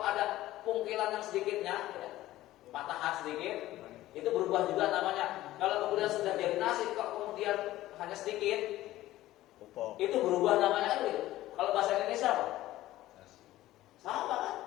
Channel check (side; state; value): right; quieter; 15.5 dB